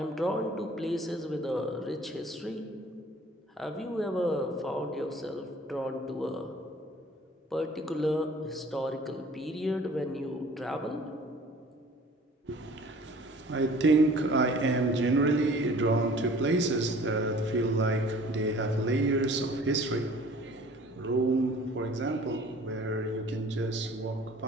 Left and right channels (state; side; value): normal; both; correlation 0.49